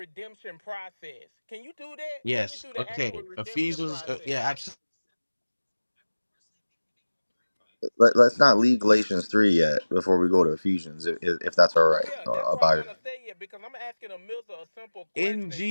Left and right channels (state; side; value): inverted; both; correlation -1.00